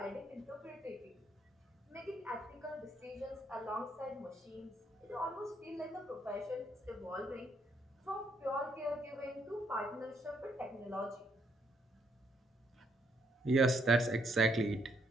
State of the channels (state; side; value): normal; both; correlation 0.73